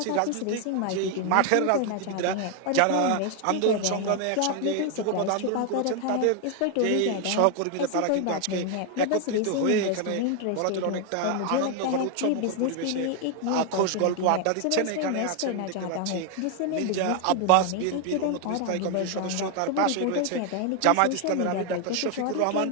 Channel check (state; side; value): different; both; correlation 0.00